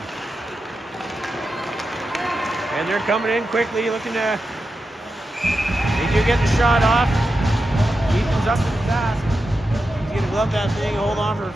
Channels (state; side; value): normal; both; correlation 0.90